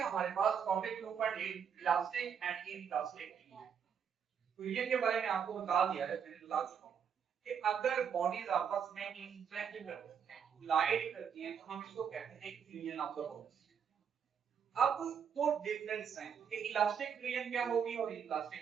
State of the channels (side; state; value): left; quieter; 7.4 dB